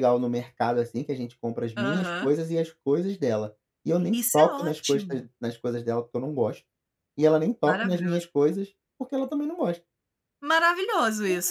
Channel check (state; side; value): identical; both; correlation 1.00